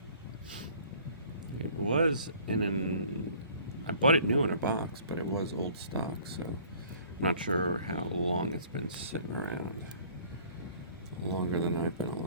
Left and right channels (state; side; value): inverted; both; correlation -0.54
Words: It was I bought it new in a box, but it was old stock, so I'm not sure how long it's been sitting around. Longer than I've been